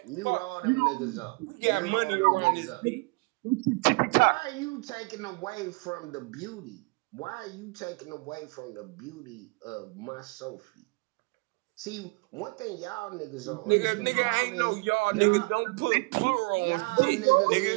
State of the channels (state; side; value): quieter; left; 28.5 dB